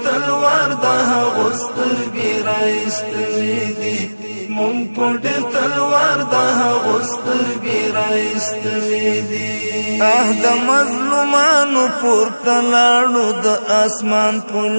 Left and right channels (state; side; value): inverted; both; correlation -1.00